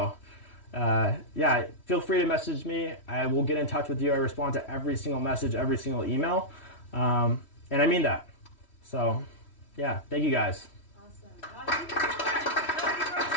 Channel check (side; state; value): right; late; 3.1 ms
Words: yeah, feel free to message me. I will get in touch with you. I respond to every single message, every single email. And I mean that. So yeah, thank you guys. Awesome.